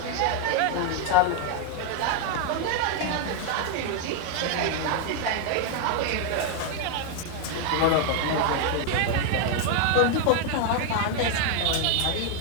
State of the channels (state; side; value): different; both; correlation 0.00